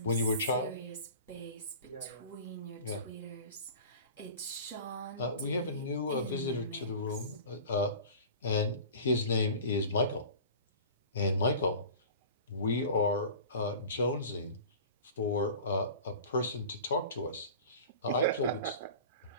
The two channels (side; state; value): both; inverted; correlation -0.39